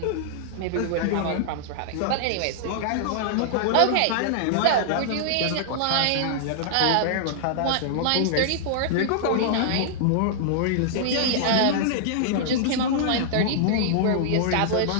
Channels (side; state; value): both; different; correlation -0.01